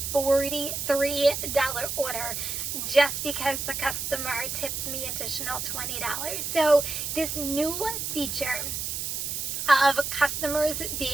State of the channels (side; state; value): right; noise; hiss, 3 dB below the sound